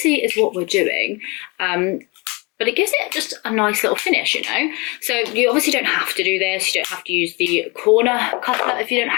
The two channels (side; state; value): right; quieter; 27.8 dB